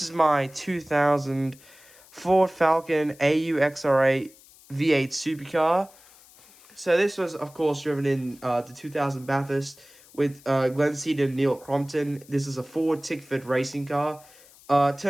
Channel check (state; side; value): noise; left; hiss, 25 dB below the sound